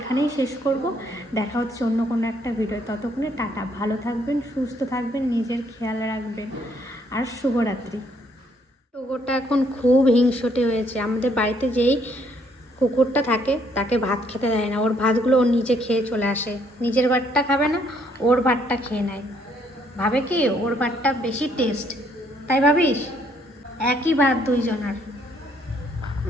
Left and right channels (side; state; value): both; normal; correlation 0.68